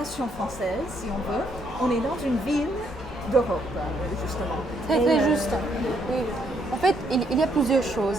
française, si on veut. On est dans une ville d'Europe, justement. Très juste. Oui. En fait, il y a plusieurs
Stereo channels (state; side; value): normal; both; correlation 0.72